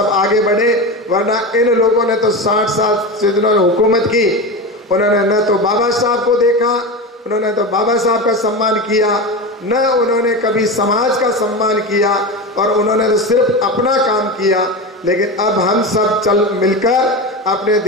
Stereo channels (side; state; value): both; normal; correlation 0.22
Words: आगे बढ़े। वरना इन लोगों ने तो 60 साल से जिन्होंने हुकूमत की, उन्होंने न तो बाबा साहब को देखा, उन्होंने तो बाबा साहब का सम्मान किया, न उन्होंने कभी समाज का सम्मान किया, और उन्होंने तो सिर्फ अपना काम किया। लेकिन अब हम सब चल मिलकर अपने